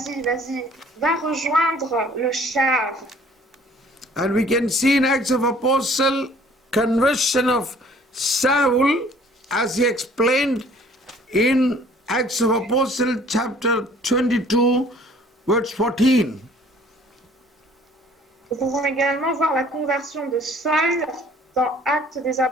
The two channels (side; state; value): both; normal; correlation 0.55